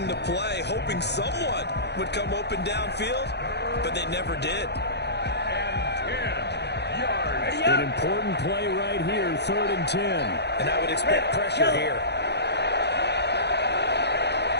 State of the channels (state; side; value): late; right; 0.49 ms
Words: the play, hoping someone would come open downfield, but they never did. An important play right here, 3rd and 10. And I would expect pressure here.